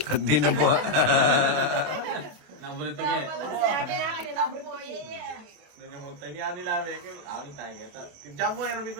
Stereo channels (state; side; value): late; left; 27 ms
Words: Di na bu... Nabulit ka eh. Sabi natin na number 4. Doon yung mutay niya nila, Mekil. Awin tayo kita. Diyan mo, yan, ko